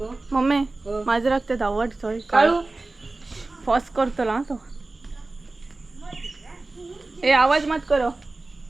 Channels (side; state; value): left; quieter; 3.2 dB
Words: मम्मी माजराक ते धावट थंय काळू फॉस करतलो तो. ए आवाज मत करो.